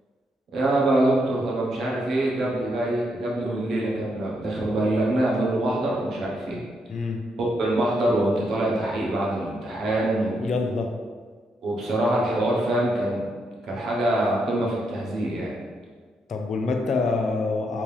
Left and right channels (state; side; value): normal; both; correlation 0.79